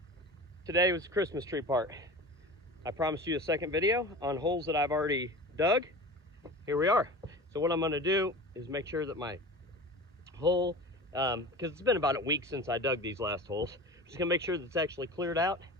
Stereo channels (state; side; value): normal; both; correlation 0.34